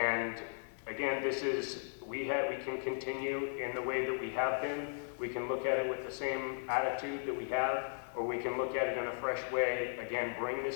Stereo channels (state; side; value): silent; right; digital silence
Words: again, this is, we can continue in the way that we have been. We can look at it with the same attitude that we have, or we can look at it in a fresh way. Again, bring